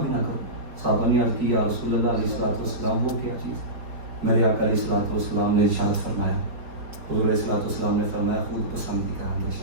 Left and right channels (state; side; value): late; left; 4.6 ms